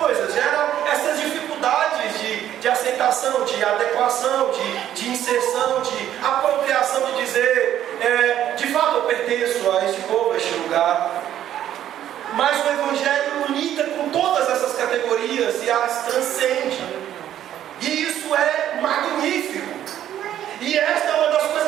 gera essas dificuldades de aceitação, de adequação, de inserção, de apropriação, de dizer, de fato eu pertenço a este povo, a este lugar. Mas o Evangelho lida com todas essas categorias e as transcende. E isso é magnífico. E esta é uma das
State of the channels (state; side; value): quieter; left; 11.3 dB